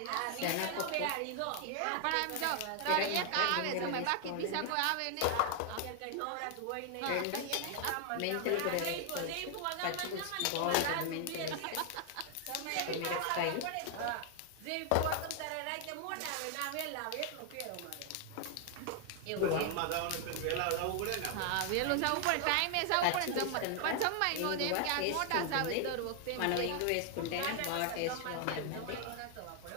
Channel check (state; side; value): different; both; correlation 0.00